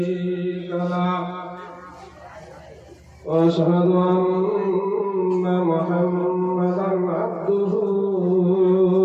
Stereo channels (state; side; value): identical; both; correlation 1.00